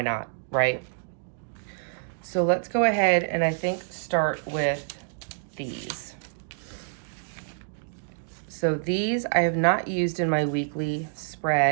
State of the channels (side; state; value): left; silent; digital silence